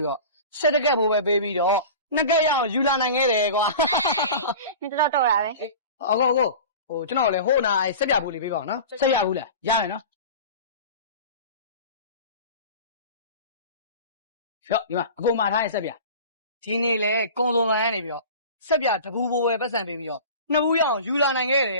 ပြီးတော့ဆက်တကက်ဖို့ပဲပေးပြီးတော့နှစ်ကက်ရအောင်ယူလာနိုင်ခဲ့တယ်ကွာ你知道多少呗？အကိုဟိုကျွန်တော်လည်းဟိုနာဆက်ပြဘူးလေးပေးပါအောင်နော်ဆက်ရဘူးလားရတယ်နော်ဖြော့ဒီမှာအကိုမှာထားရဲ့ဆက်ပြဒီနေ့လေကုန်းသုံးဆိုင်ကနေပြီးတော့ဆက်ပြတပူဘိုးပဲပတ်စံပေးပြီးတော့နှစ်ဘူးရအောင်ယူလာနိုင်ခဲ့တ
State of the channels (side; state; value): both; inverted; correlation -0.36